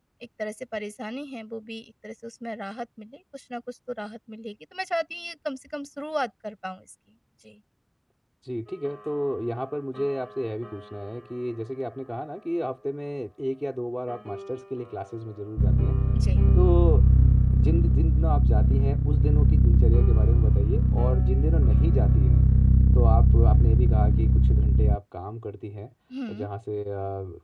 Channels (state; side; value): identical; both; correlation 1.00